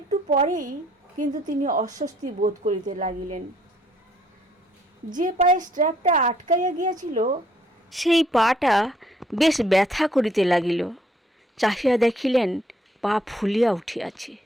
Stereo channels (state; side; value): normal; both; correlation 0.65